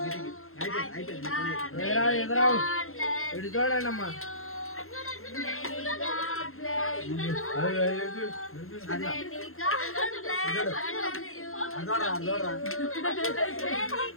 ఎదురావు ఇటు చూడండి అమ్మా. అదోడా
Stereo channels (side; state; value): right; late; 0.62 ms